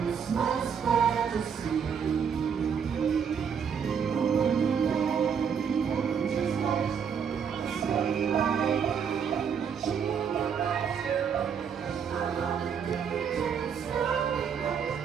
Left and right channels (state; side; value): quieter; left; 7.1 dB